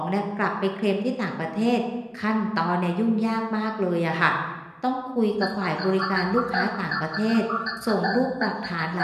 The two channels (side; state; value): both; identical; correlation 1.00